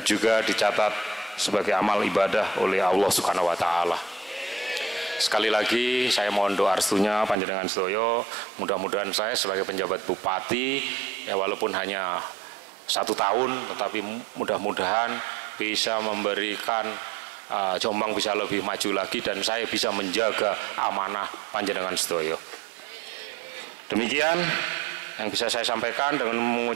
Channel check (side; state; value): left; drops out; at 7.4 s